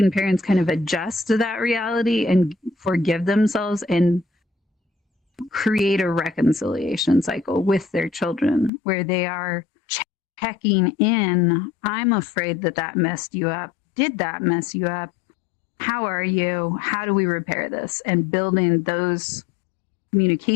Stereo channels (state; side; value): drops out; right; at 8.7 s